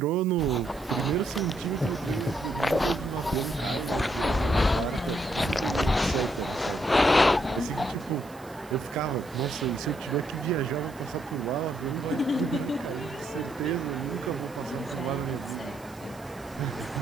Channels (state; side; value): noise; right; hiss, 24 dB below the sound